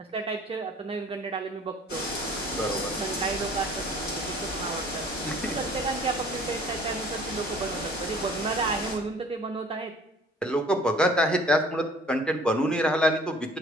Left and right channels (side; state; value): both; normal; correlation 0.52